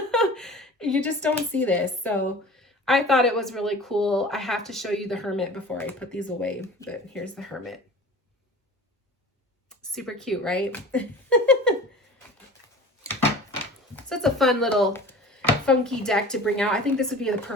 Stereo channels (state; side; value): normal; both; correlation 0.40